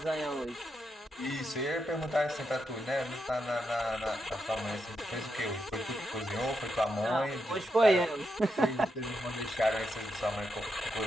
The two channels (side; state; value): both; normal; correlation 0.84